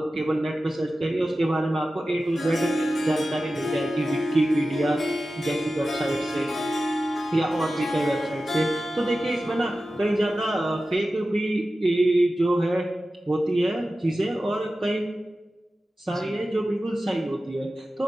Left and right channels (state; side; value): normal; both; correlation 0.94